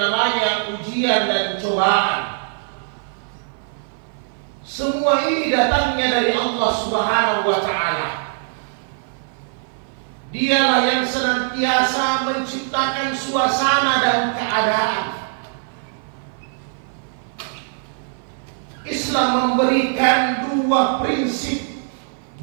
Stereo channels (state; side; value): silent; left; 56 dB below the other